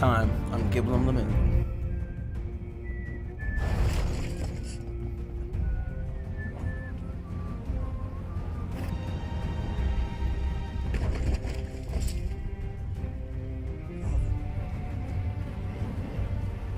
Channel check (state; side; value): identical; both; correlation 1.00